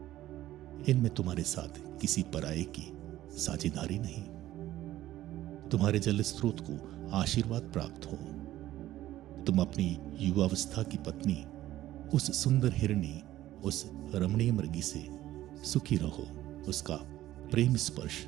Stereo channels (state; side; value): quieter; left; 14.3 dB